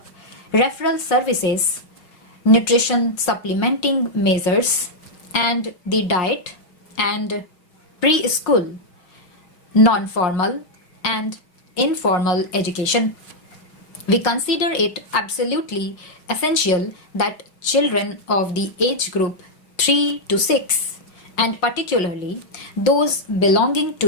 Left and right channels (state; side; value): late; right; 6.3 ms